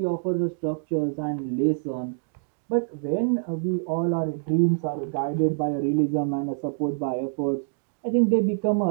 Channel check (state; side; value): silent; left; digital silence